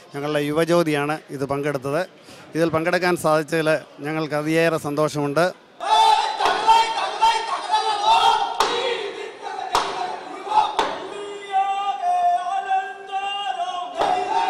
ഞങ്ങളുടെ യുവജ്യോതിയാണ് ഇത് പങ്കെടുത്തത്. ഇതിൽ പങ്കെടുക്കാൻ സാധിച്ചതിൽ ഞങ്ങൾക്ക് അതിയേറെ സന്തോഷമുണ്ട്.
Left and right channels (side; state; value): both; identical; correlation 1.00